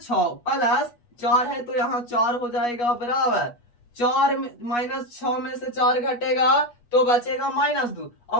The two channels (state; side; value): late; right; 8.3 ms